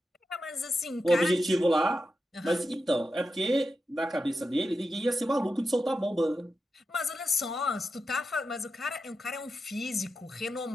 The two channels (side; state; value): both; normal; correlation 0.89